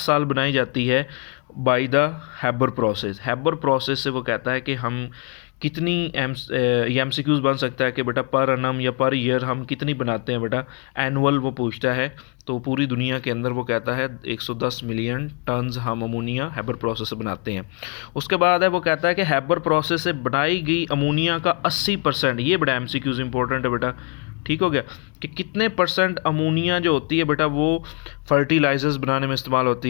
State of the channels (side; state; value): right; quieter; 34.6 dB